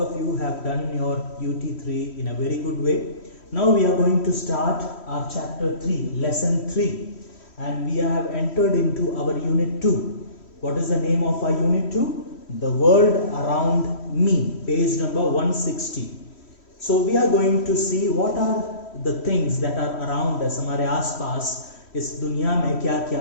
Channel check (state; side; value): late; right; 3.1 ms